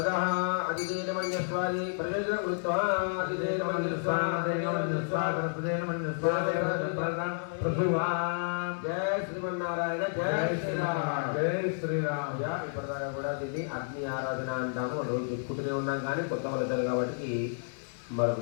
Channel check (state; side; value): silent; right; 57 dB below the other